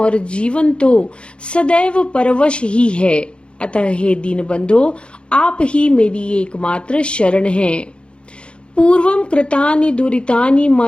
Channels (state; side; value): late; right; 0.056 ms